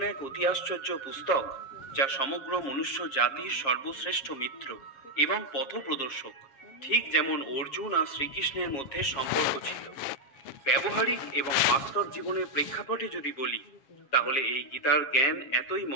এক অতি আশ্চর্য পুস্তক যা সমগ্র মনুষ্য জাতির সর্বশ্রেষ্ঠ মিত্র এবং পথপ্রদর্শক। ঠিক যেমন অর্জুন আর শ্রীকৃষ্ণের মধ্যে সম্পর্ক ছিল। ব্যবহারিক এবং বাস্তব জীবনের প্রেক্ষাপটে যদি বলি, তাহলে এই গীতার জ্ঞান এতই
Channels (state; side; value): late; right; 7.4 ms